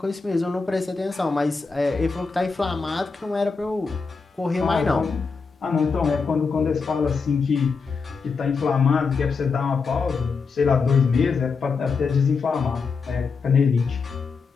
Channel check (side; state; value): right; quieter; 4.9 dB